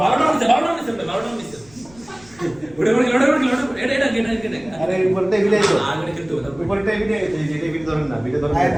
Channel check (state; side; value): noise; left; rumble, 25 dB below the sound